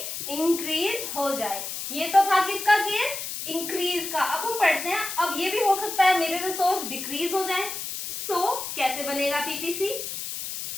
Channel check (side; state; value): left; noise; hiss, 6 dB below the sound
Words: हो जाए। ये तो था किसका केस? इंक्रीज का। अब हम पढ़ते हैं, अब ये भी हो सकता है मेरे रिसोर्स डिक्रीज हो जाए। कैसे बनेगा पीपीसी?